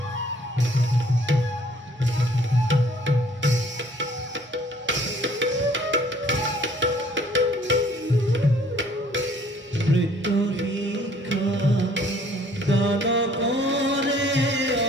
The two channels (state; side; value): normal; both; correlation 0.58